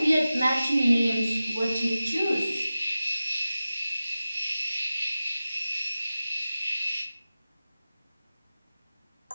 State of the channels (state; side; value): inverted; both; correlation -0.95